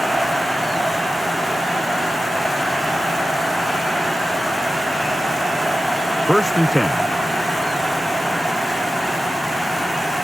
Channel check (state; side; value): normal; both; correlation 0.93